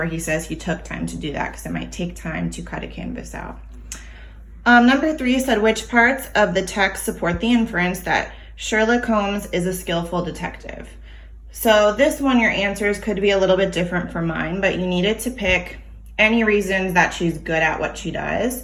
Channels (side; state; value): both; identical; correlation 1.00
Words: he says he took time to do that because it might take time to cut a canvas out. Number 3 said, "Which parts of the text support the inference that Sherlock Holmes is a skillful detective?" So this one, your answers could be a little bit different from mine, but you needed to pick any reasons that she's good at what she does.